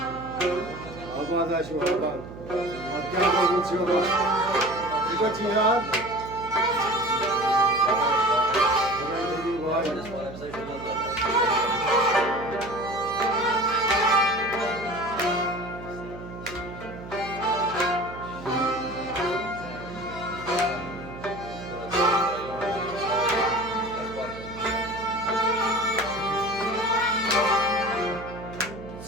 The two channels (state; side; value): noise; right; hum, 13 dB below the sound